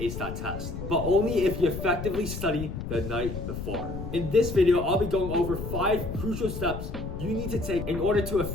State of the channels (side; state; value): left; noise; rumble, 7 dB below the sound